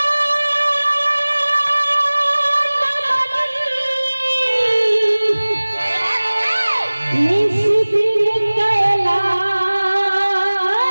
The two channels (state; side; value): inverted; both; correlation -1.00